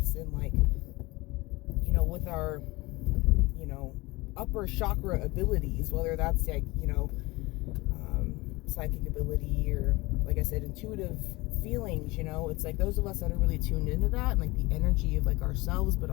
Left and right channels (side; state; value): right; quieter; 22.2 dB